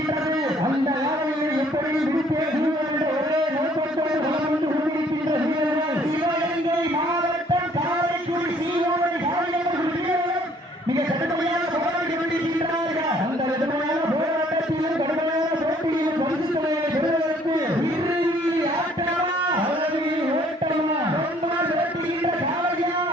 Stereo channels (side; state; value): both; normal; correlation 0.60